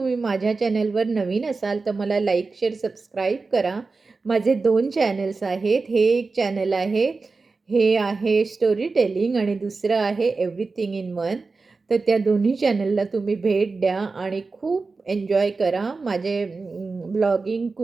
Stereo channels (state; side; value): quieter; left; 4.1 dB